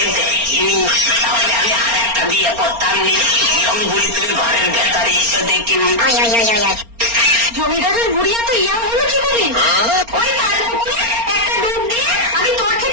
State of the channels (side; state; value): left; late; 4.3 ms